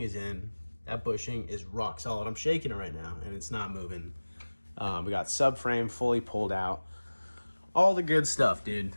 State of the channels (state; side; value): inverted; both; correlation -1.00